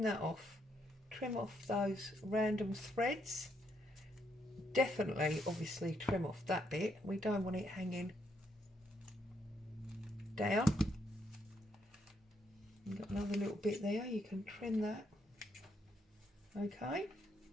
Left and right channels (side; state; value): both; normal; correlation 0.75